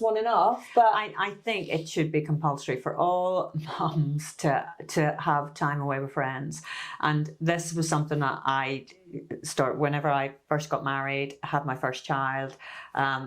off? But I think it should be compulsory for all mums to have time away with friends. And this was something that I whenever I first got married, had my first child.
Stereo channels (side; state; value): both; identical; correlation 1.00